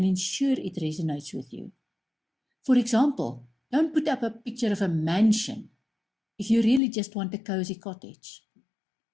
ensure it resonates with you. For example, don't put up a picture of a mansion if you really just want a cozy cottage.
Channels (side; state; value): right; drops out; at 6.8 s